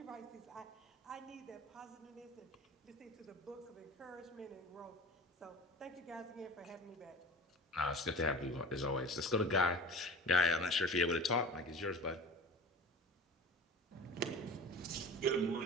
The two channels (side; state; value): both; normal; correlation 0.38